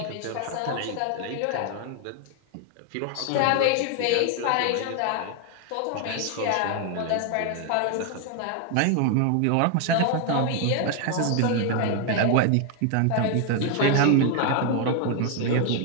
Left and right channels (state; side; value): different; both; correlation 0.00